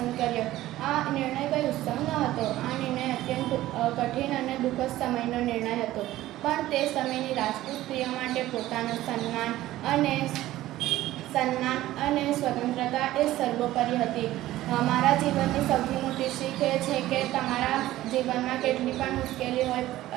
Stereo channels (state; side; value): quieter; left; 15.3 dB